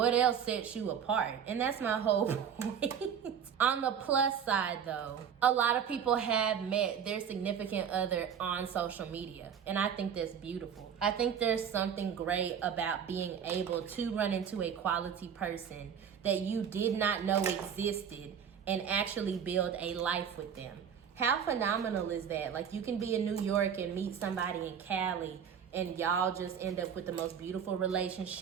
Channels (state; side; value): quieter; left; 7.8 dB